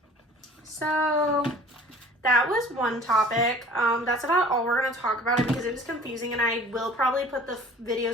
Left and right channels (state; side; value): normal; both; correlation 0.48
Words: So, that was one topic. That's about all we're going to talk about it, because it was confusing, and I will probably put the